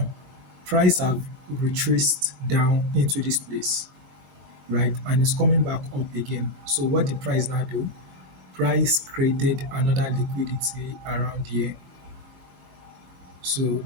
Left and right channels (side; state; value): left; late; 21 ms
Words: price have retraced down into this place, right? And it's coming back up again. So what the price now do? Price created another liquidity around here. So